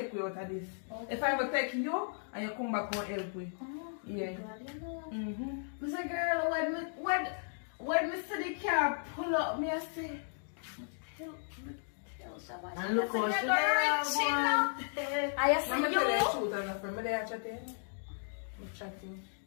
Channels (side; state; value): right; silent; digital silence